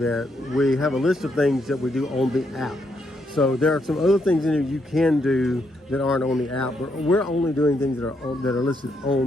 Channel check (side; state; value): both; normal; correlation 0.77